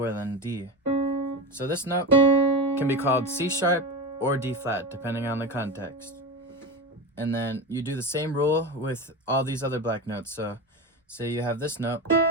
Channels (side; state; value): both; normal; correlation 0.22